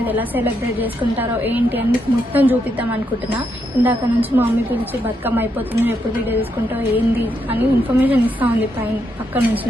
ఎలా సెలబ్రేట్ చేసుకుంటారో ఏంటి అని మొత్తం చూపిద్దాం అనుకుంటున్నా. ఇందాక నుంచి మా మమ్మీ పిలిచి బతుకమ్మ అయిపోతుంది, ఎప్పుడు వీడియో తీసుకుంటావు ఏంది అని ఇన్ఫర్మేషన్ ఇస్తూ ఉంది పక్క నుంచి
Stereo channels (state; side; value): normal; both; correlation 0.79